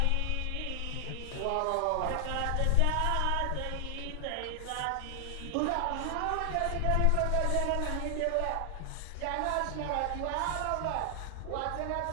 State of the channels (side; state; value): both; different; correlation 0.00